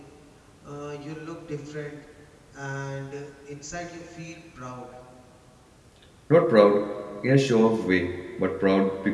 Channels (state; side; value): identical; both; correlation 1.00